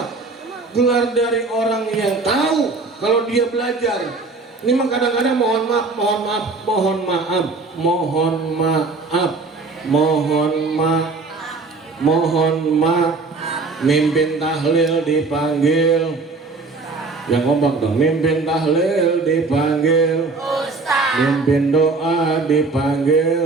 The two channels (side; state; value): left; quieter; 3.9 dB